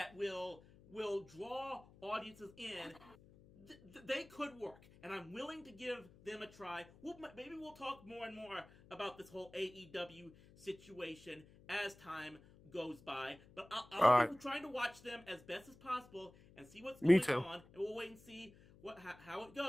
will draw audiences in. They could work, and I'm willing to give them a try. Maybe we'll talk more and more about this whole AEW situation as time goes by, but I'll be trying to watch them as best as possible and see what's going on, and we'll wait and see how it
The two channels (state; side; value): noise; left; hum, 23 dB below the sound